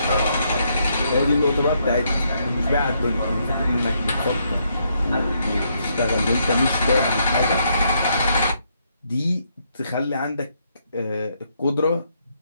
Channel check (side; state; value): both; inverted; correlation -0.75